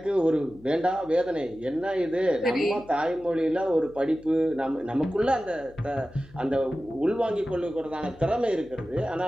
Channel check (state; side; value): noise; left; hum, 24 dB below the sound